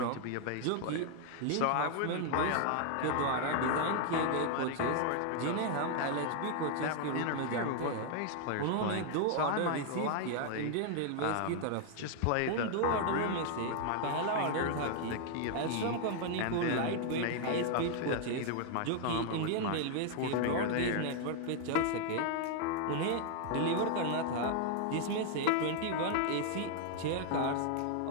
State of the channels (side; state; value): both; different; correlation 0.00